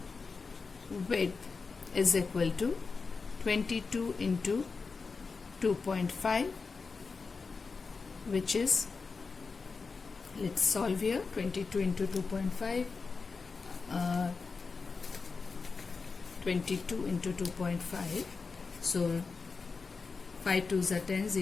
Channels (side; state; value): right; quieter; 4.6 dB